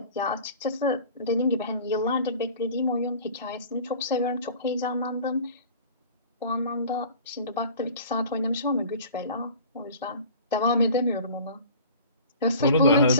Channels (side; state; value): both; inverted; correlation -0.43